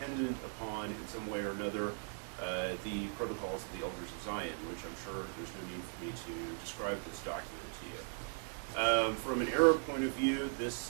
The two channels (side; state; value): left; silent; 52 dB below the other